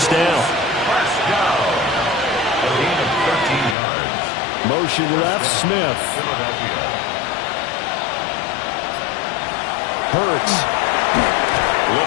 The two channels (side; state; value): right; drops out; at 3.8 s